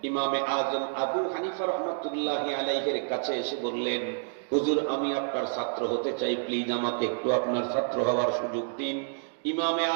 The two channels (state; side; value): silent; left; digital silence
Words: ইমামে আজম আবু হানিফা রাহমাতুল্লাহি আলাইহির কাছে এসে বললেন, হুজুর আমি আপনার ছাত্র হতে চাই, প্লিজ আমাকে একটু আপনার ছাত্র হওয়ার সুযোগ দিন। ইমামে